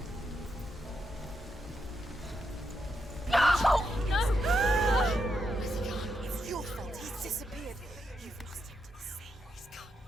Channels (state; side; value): normal; both; correlation 0.82